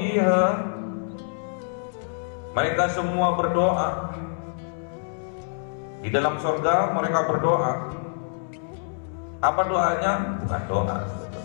mereka semua berdoa. Di dalam surga mereka berdoa. Apa doanya? Bukan doa,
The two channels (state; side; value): silent; right; digital silence